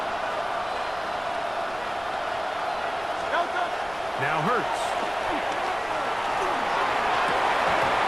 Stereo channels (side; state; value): right; noise; rumble, 23 dB below the sound